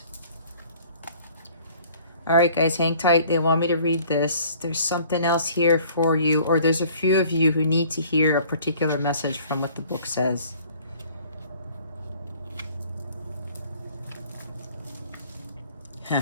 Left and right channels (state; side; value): inverted; both; correlation -0.54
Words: All right, guys, hang tight. They want me to read this. There's something else here for you, or there's a few of you who need to hear a particular message from what the book says.